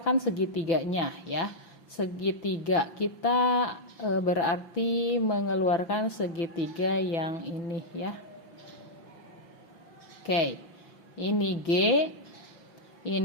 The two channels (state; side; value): late; right; 6.0 ms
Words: segitiganya ya. Segitiga kita berarti mengeluarkan segitiga yang ini ya. Oke. Ini G,